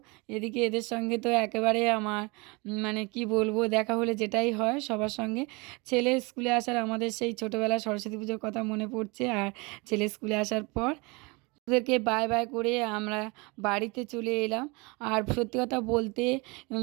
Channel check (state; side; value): quieter; left; 27.2 dB